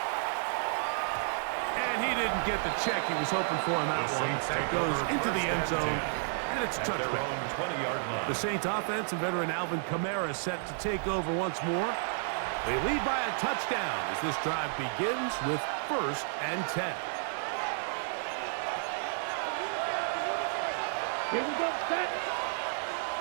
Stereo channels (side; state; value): left; silent; digital silence